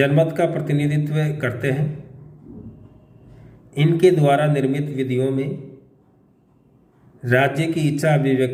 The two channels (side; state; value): both; identical; correlation 1.00